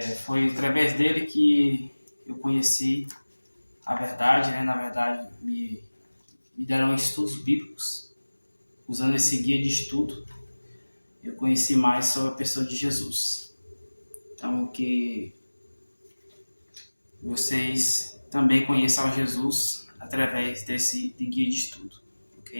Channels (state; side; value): inverted; both; correlation -1.00